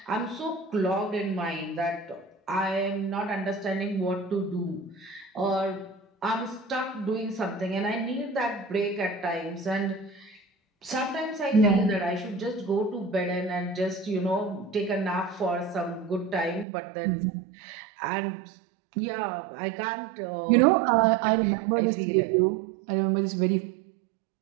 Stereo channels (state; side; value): drops out; left; at 16.7 s